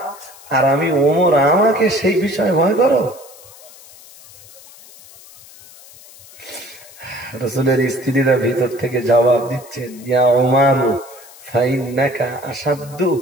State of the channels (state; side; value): noise; left; hiss, 21 dB below the sound